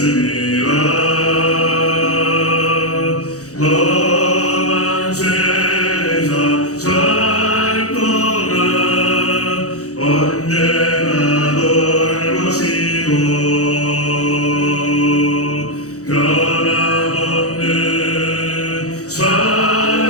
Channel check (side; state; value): right; late; 0.66 ms